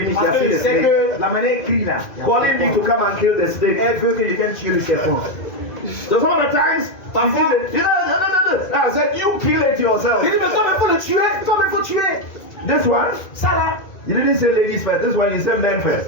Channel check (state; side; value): late; right; 2.2 ms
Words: she Parce has que seen je the sais snake. que la manière elle crie là. Calling me to come and kill the snake. Elle veut que je vienne tuer le serpent. So some of the times, Parfois, no. I said, you kill it yourself. j'ai dit, mais comme il faut le tuer, comme il faut tuer. This one, Ça là, you didn't say ladies first. This one, you said men